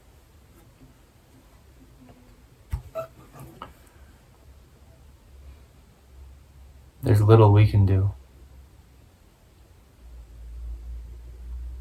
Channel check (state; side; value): identical; both; correlation 1.00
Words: There's little we can do.